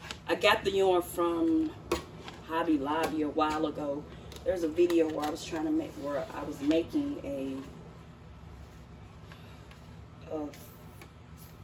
I got the yarn from Hobby Lobby a while ago. There's a video where I was trying to make, where I was making a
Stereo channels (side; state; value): both; identical; correlation 1.00